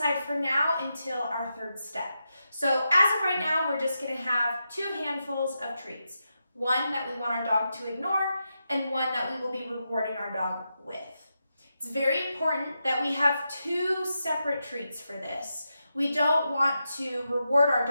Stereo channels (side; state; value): both; inverted; correlation -0.87